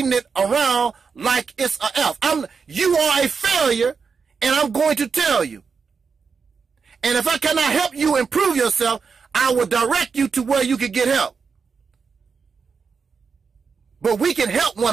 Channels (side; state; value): left; quieter; 5.5 dB